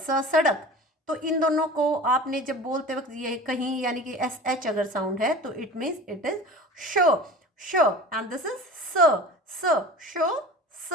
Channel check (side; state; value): both; normal; correlation 0.37